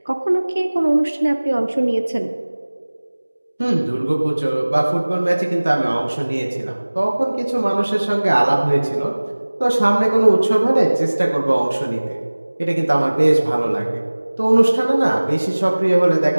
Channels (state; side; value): inverted; both; correlation -1.00